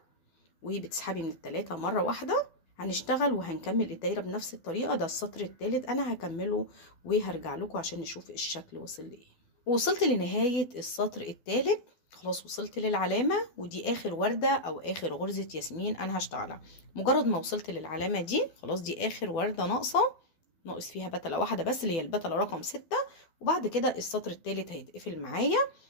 وبتسحبي من ال3 مرة واحدة. هنشتغل وهنكمل الدايرة بنفس الطريقة. ده السطر الثالث انا هكمله وهرجع لكم عشان نشوف الشكل وصل لايه. وصلت لنهاية السطر الثالث، خلاص وصلت للعلامة، ودي اخر وردة او اخر غرزة ياسمين انا هشتغلها. مجرد ما وصلت للعلامة دي خلاص، دي اخر وردة ناقص فيها بتلة واحدة بس اللي هي البتلة رقم 6، وبعد كده السطر الثالث هيتقفل معايا.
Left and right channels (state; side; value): late; right; 12 ms